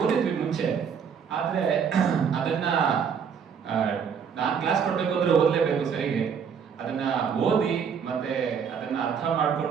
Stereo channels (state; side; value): quieter; left; 6.9 dB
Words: ಓದಿದ್ವಿ ಮುಂಚೆ, ಆದ್ರೆ ಅದನ್ನ ನಾನು ಕ್ಲಾಸ್ ಕೊಡ್ಬೇಕು ಅಂದ್ರೆ ಓದ್ಲೇಬೇಕು ಸರಿಗೆ. ಅದನ್ನ ಓದಿ ಮತ್ತೆ ಅದನ್ನ ಅರ್ಥ